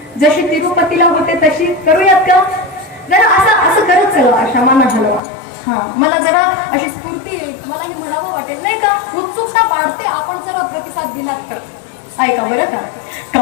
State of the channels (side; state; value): right; drops out; at 5.2 s